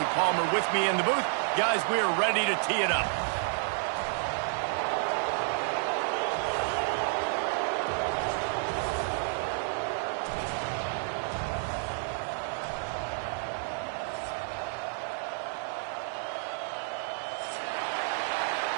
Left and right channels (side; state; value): left; silent; 57 dB below the other